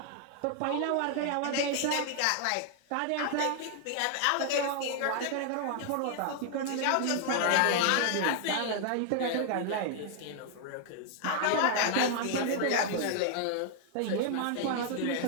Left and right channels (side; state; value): both; different; correlation 0.00